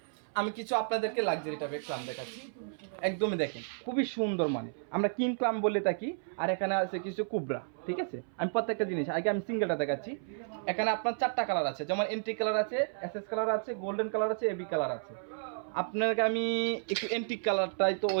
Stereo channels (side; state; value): left; silent; 56 dB below the other